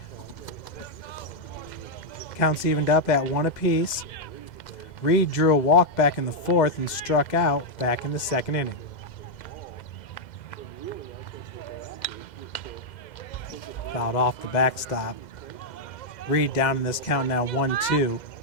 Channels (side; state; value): right; late; 2.0 ms